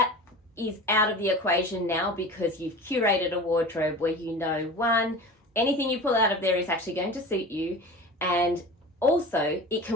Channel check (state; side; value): normal; both; correlation 0.35